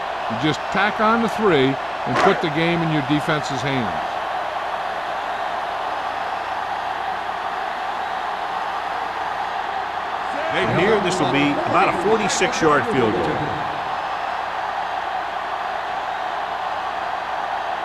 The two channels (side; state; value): both; identical; correlation 1.00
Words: just tack on the 3 and put the game in your defense's hands. And here, this will be about a 46-yard field goal.